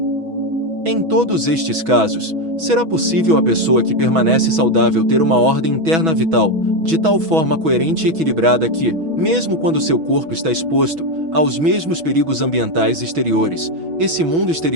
Em todos estes casos, será possível a pessoa que permanece saudável ter uma ordem interna vital, de tal forma coerente e equilibrada que, mesmo quando seu corpo está exposto aos mesmos perigos ambientais exteriores, esse mundo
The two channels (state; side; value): late; left; 6.2 ms